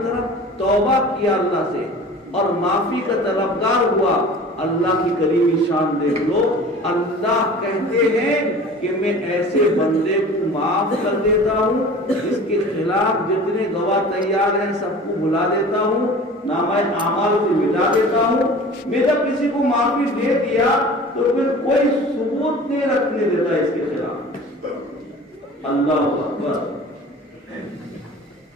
طرف توبہ کیا اللہ سے اور معافی کا طلبگار ہوا، اللہ کی کریمی شان دیکھ لو، اللہ کہتے ہیں کہ میں ایسے بندے کو معاف کر دیتا ہوں جس کے خلاف جتنے گواہ تیار ہیں سب کو بلا دیتا ہوں، نامہ اعمال سے مٹا دیتا ہوں۔ میں جب کسی کو معافی دے دیا تو پھر کوئی ثبوت نہیں رکھنے دیتا اس کے خلاف۔ اللہ اکبر۔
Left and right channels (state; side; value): normal; both; correlation 0.41